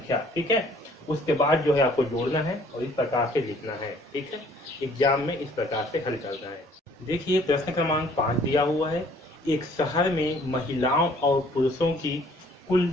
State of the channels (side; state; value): both; normal; correlation 0.58